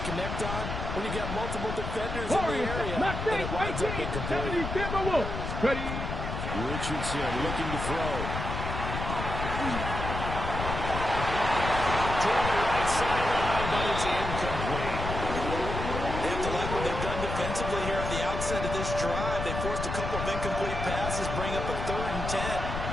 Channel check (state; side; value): noise; left; rumble, 4 dB below the sound